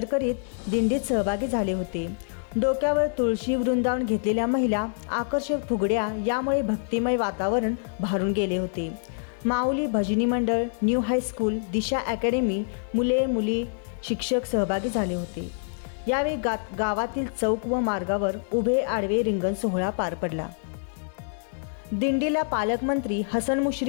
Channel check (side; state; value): right; silent; 61 dB below the other